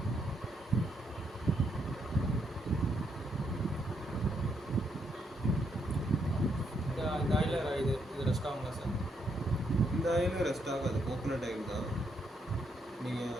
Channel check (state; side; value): normal; both; correlation 0.76